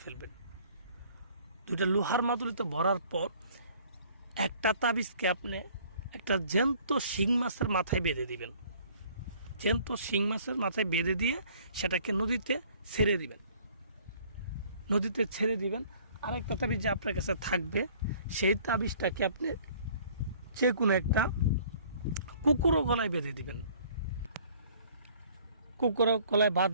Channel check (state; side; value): inverted; both; correlation -0.55